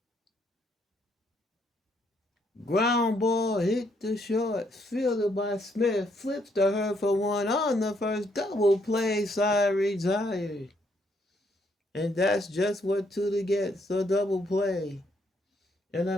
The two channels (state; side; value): normal; both; correlation 0.72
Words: Ground ball hit the short, fielded by Smith, flips to her for 1 on the first, double play, side retired. And that's just what Tudor gets, a double play. And